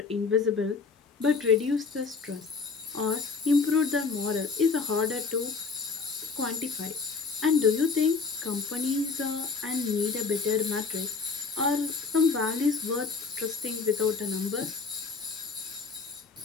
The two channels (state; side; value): quieter; right; 4.8 dB